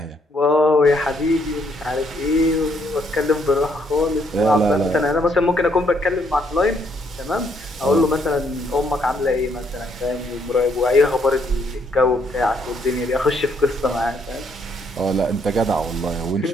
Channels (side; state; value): both; normal; correlation 0.70